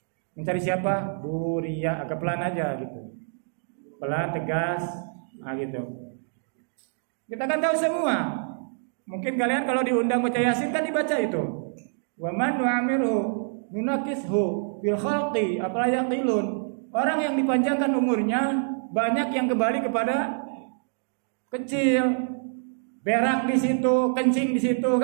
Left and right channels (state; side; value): silent; left; digital silence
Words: Mencari siapa? Bu Ria. Agak pelan aja gitu. Pelan, tegas, gitu. Kita kan tahu semua. Mungkin kalian kalau diundang baca Yasin kan dibaca itu. Wa man nu'amiru nunakishu fil khalqi afala yaqilun. Orang yang dipanjangkan umurnya banyak yang kembali kepada kecil, berak di situ, kencing di situ